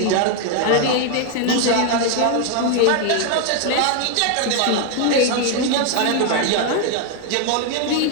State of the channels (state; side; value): different; both; correlation 0.00